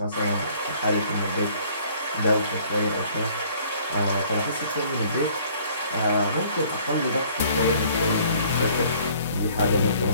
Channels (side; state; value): both; inverted; correlation -0.57